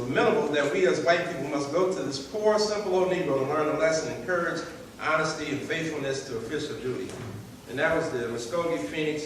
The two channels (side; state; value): both; identical; correlation 1.00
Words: that we as white people must go to this poor, simple old Negro to learn a lesson in courage, honesty, and faithfulness to official duty. And that was the Muskogee Phoenix,